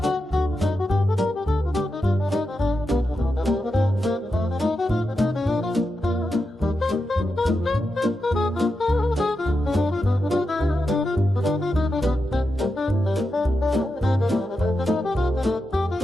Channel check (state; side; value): normal; both; correlation 0.88